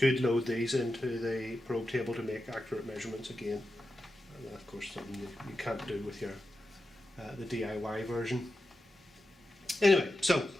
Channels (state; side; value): normal; both; correlation 0.90